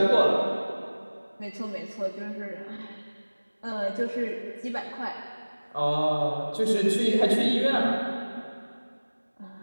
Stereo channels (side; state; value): both; inverted; correlation -1.00